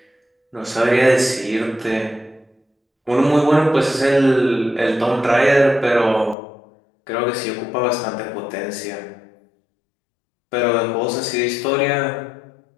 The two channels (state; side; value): drops out; right; at 6.4 s